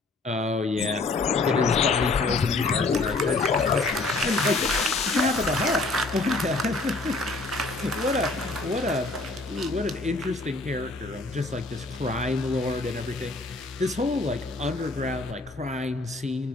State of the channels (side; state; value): right; quieter; 3.2 dB